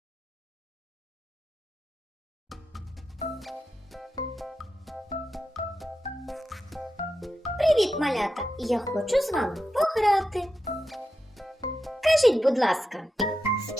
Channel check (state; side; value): normal; both; correlation 0.89